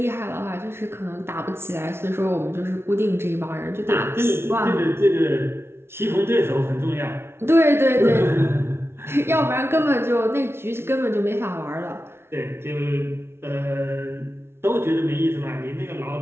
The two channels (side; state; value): left; late; 0.12 ms